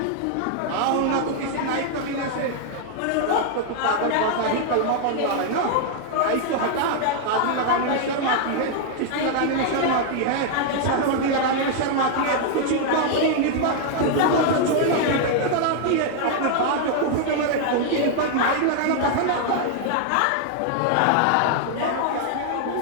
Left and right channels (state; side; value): different; both; correlation 0.00